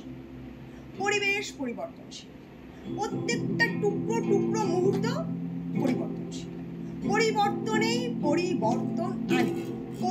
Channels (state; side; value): identical; both; correlation 1.00